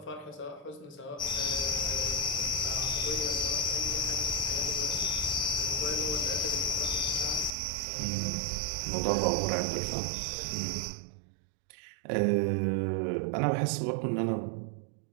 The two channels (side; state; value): left; drops out; at 7.5 s